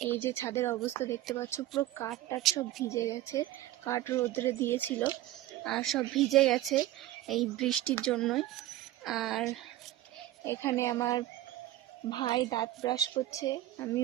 এই যে ছাদের অবস্থা দেখতে পাচ্ছ, পুরো কাঠ টাট সব ভিজে গেছে, কাঠ রোদ্রে দিয়েছিল আর সব ভিজে গেছে এই বৃষ্টির জন্যই। আর এখানে আমার ভাই দাঁত ব্রাশ করছে,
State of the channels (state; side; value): quieter; left; 14.7 dB